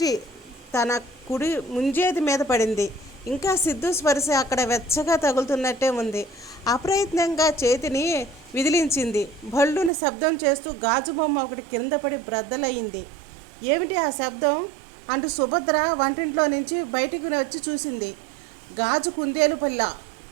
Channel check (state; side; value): drops out; left; at 9.9 s